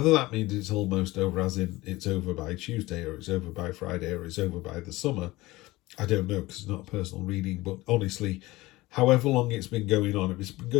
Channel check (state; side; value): quieter; right; 19.5 dB